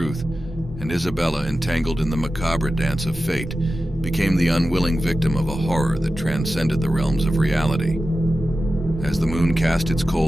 and Isabella, entangled in the macabre dance of fate, became the unwilling victim of a horror that transcended the realms of reality. As the moon cast its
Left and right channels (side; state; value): both; normal; correlation 0.93